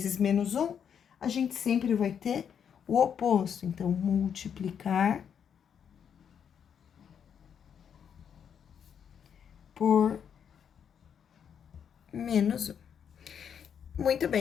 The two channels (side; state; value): right; quieter; 7.9 dB